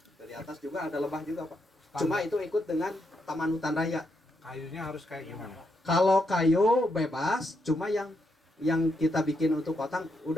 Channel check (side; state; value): both; normal; correlation 0.80